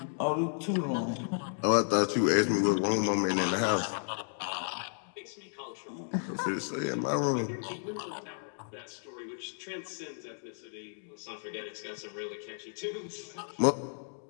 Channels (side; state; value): right; silent; digital silence